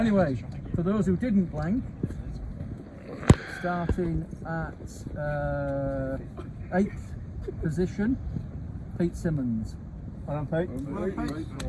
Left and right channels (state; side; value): identical; both; correlation 1.00